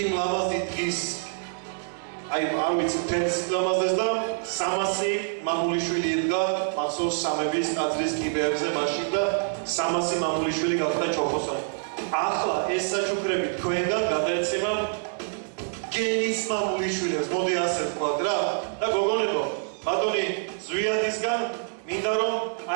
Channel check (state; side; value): silent; left; digital silence